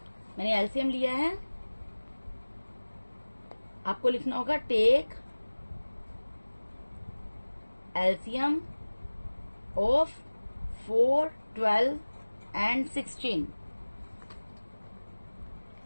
मैंने एलसीएम लिया है। आपको लिखना होगा टेक एलसीएम ऑफ 4, 12 एंड 16।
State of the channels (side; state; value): both; inverted; correlation -1.00